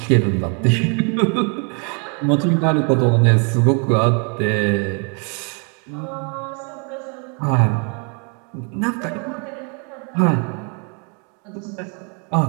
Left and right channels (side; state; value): left; quieter; 38.1 dB